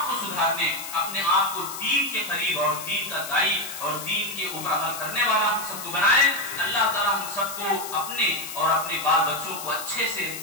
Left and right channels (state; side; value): noise; left; hiss, 9 dB below the sound